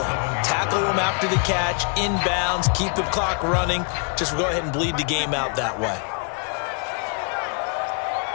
Tackle them after the catch, inbounds, keep the clock running. Just go ahead and bleed the game out that way.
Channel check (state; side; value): quieter; right; 39.2 dB